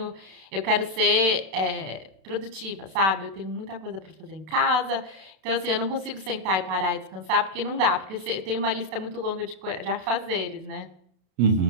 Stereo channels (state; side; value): late; left; 31 ms